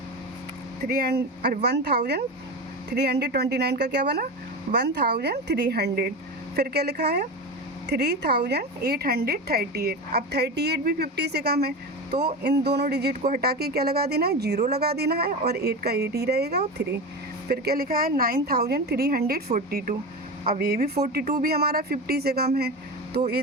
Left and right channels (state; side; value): normal; both; correlation 0.24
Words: 1329 का क्या बना 1300। फिर क्या लिखा है 3838। अब 38 भी 50 से कम है, तो इन दोनों डिजिट को हटा के क्या लगा देना है, 0 लगा देना है और 8 का 8 ही रहेगा और 3। फिर क्या लिखा है 9342। अब ये भी 42 भी हमारा 50 से कम है, तो ये